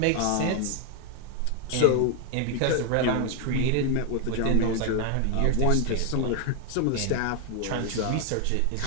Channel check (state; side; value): different; both; correlation 0.01